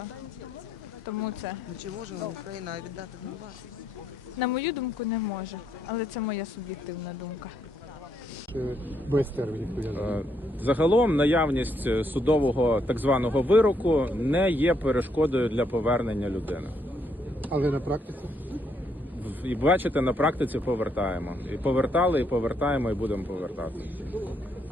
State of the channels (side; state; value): both; normal; correlation 0.74